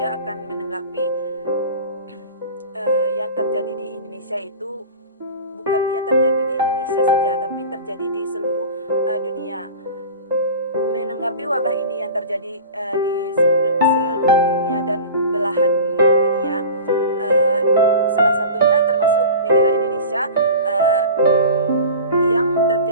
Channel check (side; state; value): both; inverted; correlation -0.37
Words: akan menanggapi yang terjadi di Indonesia itu bukan yang terjadi di Indonesia saja, tapi terjadi di seluruh dunia. Menanggapi wabah ini yang terjadi di seluruh dunia dan belahan dunia, salah satunya termasuk negara Indonesia, yang